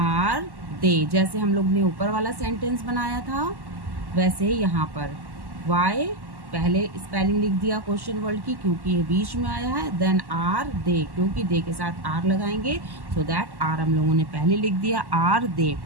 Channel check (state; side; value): late; left; 1.1 ms